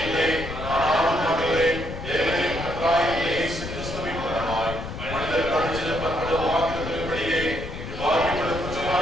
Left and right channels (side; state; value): left; noise; rumble, 8 dB below the sound